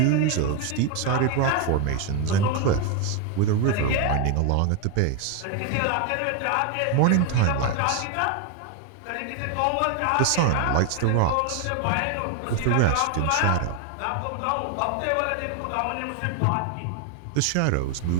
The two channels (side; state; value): both; different; correlation 0.01